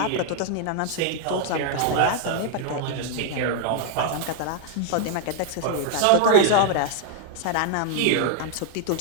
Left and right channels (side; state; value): both; different; correlation -0.01